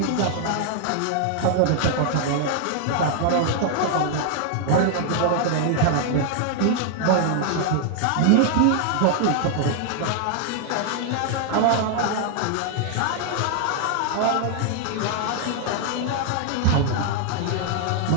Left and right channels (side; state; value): both; different; correlation 0.00